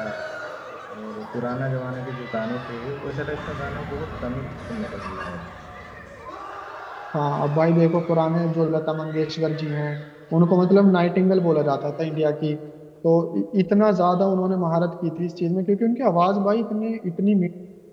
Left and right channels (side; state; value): both; identical; correlation 1.00